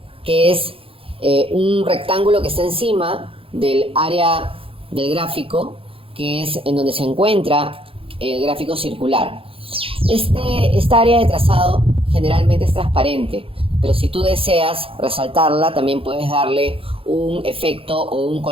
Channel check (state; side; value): late; left; 0.27 ms